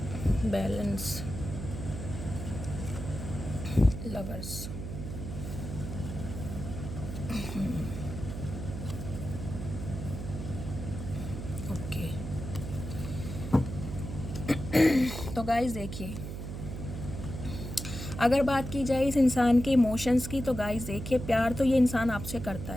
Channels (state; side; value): noise; right; hum, 7 dB below the sound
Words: balance, lovers, okay. तो गाइस देखिए, अगर बात की जाए इस इंसान के इमोशंस की, तो गाइस देखिए, प्यार तो ये इंसान आपसे करता